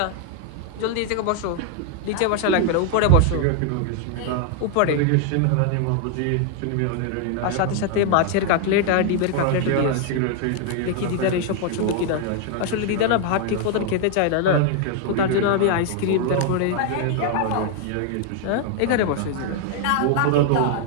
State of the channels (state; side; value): different; both; correlation 0.00